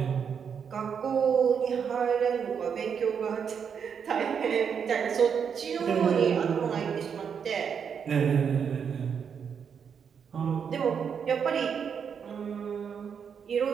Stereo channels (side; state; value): left; quieter; 7.0 dB